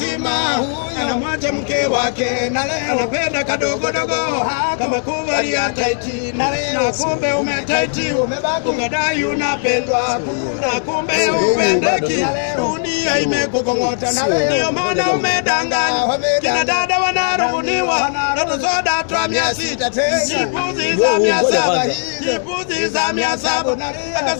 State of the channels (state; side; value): silent; right; 60 dB below the other